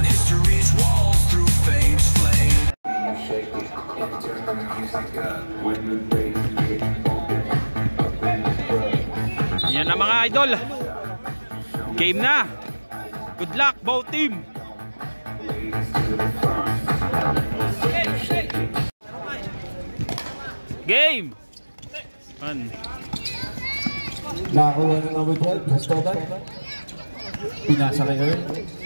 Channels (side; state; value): both; inverted; correlation -1.00